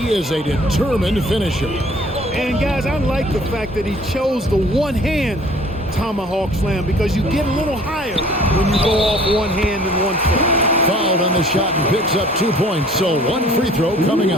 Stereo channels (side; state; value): both; normal; correlation 0.52